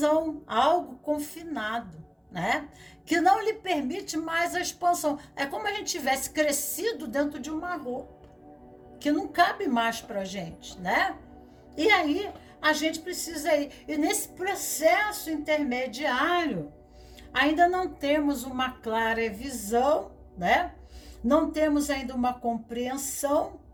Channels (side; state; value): both; identical; correlation 1.00